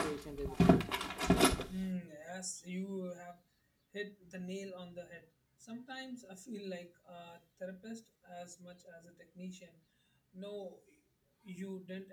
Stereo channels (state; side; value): identical; both; correlation 1.00